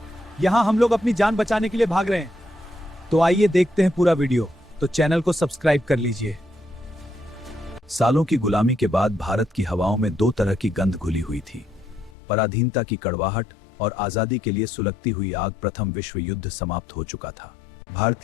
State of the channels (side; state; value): right; drops out; at 12.2 s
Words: यहां हम लोग अपनी जान बचाने के लिए भाग रहे हैं। तो आइए देखते हैं पूरा वीडियो। तो चैनल को सब्सक्राइब कर लीजिए। सालों की गुलामी के बाद भारत की हवाओं में दो तरह की गंध घुली हुई थी, पराधीनता की कड़वाहट और आजादी के लिए सुलगती हुई आग। प्रथम विश्व युद्ध समाप्त हो चुका था।